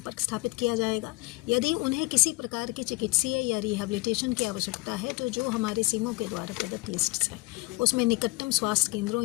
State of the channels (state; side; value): quieter; right; 23.9 dB